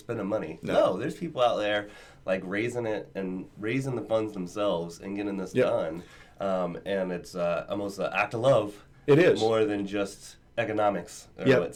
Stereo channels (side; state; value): both; identical; correlation 1.00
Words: money. No, there's people out there like raising the funds themselves and getting this done. And it's almost an act of love. It is more than just economics.